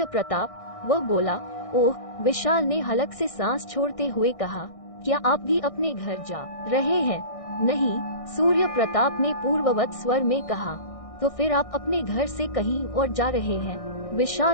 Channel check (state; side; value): late; right; 1.6 ms